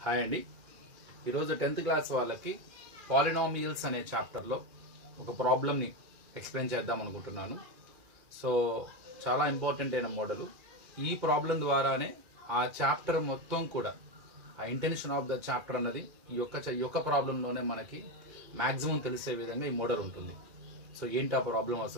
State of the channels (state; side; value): late; left; 2.4 ms